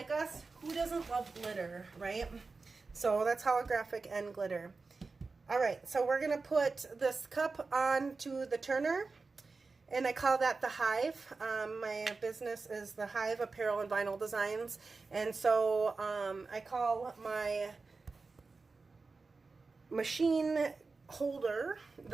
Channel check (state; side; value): quieter; left; 4.1 dB